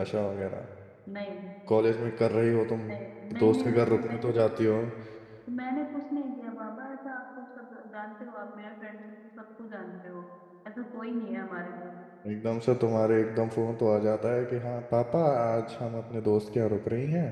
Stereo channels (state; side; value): identical; both; correlation 1.00